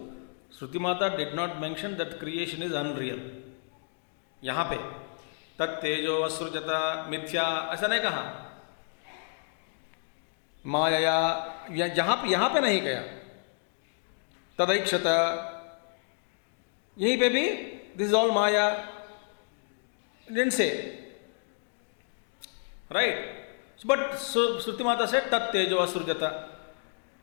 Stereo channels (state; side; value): silent; right; 55 dB below the other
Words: Shruti mata did not mention that creation is unreal. यहाँ पे तत्तेजो असृजता मिथ्या ऐसा नहीं कहा, माया यहाँ पे नहीं कहा, तदैक्षता यहीं पे भी this is all Maya, didn't say, right? But so Shruti Mata said tat tejo asrujata,